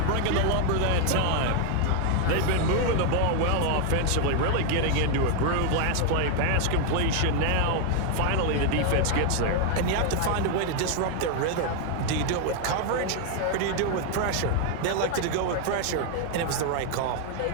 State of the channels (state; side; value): different; both; correlation 0.00